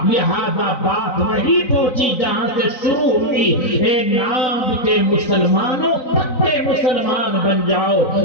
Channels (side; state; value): right; late; 3.9 ms